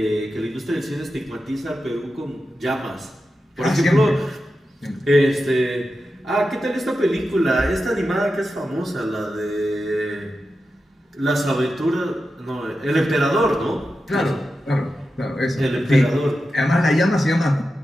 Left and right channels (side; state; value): both; normal; correlation 0.91